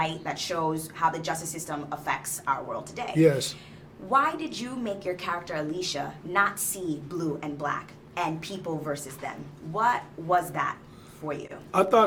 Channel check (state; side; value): identical; both; correlation 1.00